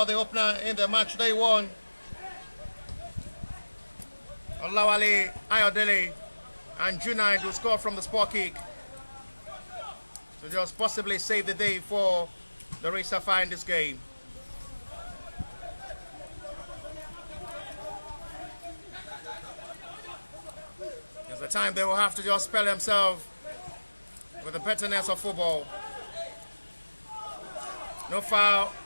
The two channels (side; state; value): both; inverted; correlation -1.00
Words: the opener in the match they won, Olawale Ayodele, and Junaid, who scored from the spot kick to just possibly save the day for the Sapphire in this game. It's the time they will have to just spell themselves with the betterness of football. No foul